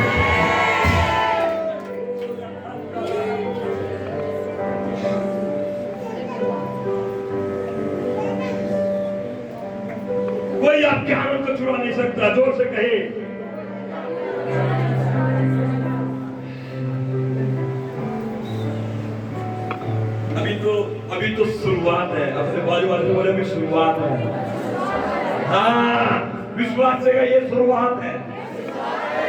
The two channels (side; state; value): both; identical; correlation 1.00